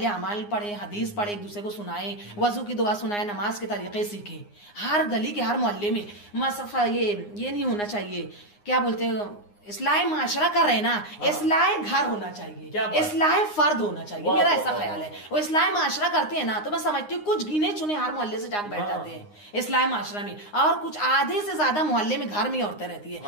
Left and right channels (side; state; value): right; late; 9.7 ms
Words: अमाल पढ़े, हदीस पढ़े, एक दूसरे को सुनाए, वजू की दुआ सुनाए, नमाज के तरीके सीखे। हर गली के हर मोहल्ले में मसफा ये नहीं होना चाहिए, क्या बोलते हैं, इस्लाह माशरा कर रहे ना, इस्लाह घर होना चाहिए, इस्लाह फर्द होना चाहिए। मेरा ऐसा ख्याल है। वो इस्लाह माशरा करते हैं ना, तो मैं समझती हूँ कुछ गिने चुने हर मोहल्ले से जाकर बैठ जाते हैं इस्लाह माशरा में, और कुछ आधे से ज्यादा मोहल्ले में घर में औरतें रहती